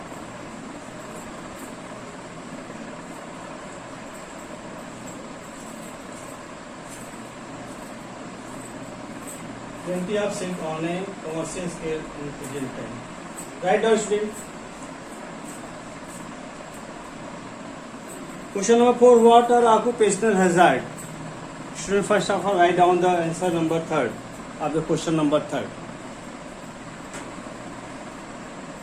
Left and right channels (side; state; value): both; identical; correlation 1.00